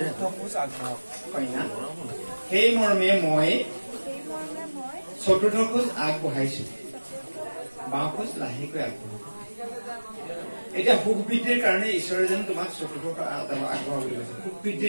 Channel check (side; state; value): both; inverted; correlation -1.00